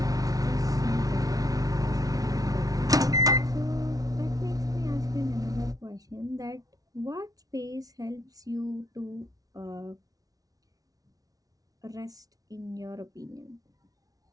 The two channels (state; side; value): late; left; 0.18 ms